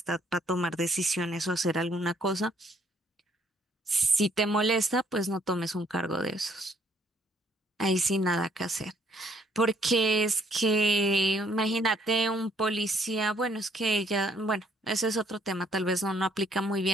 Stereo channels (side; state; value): both; normal; correlation 0.66